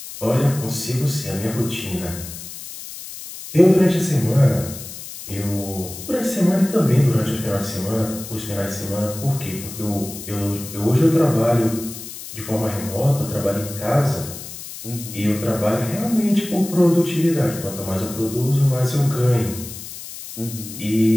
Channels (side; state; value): left; noise; hiss, 12 dB below the sound